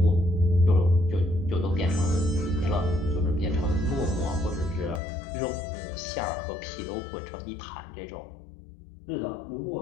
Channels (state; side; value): drops out; right; at 5.0 s